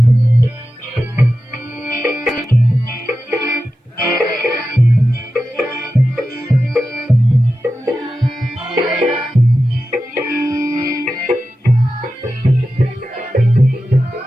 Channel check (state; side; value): normal; both; correlation 0.92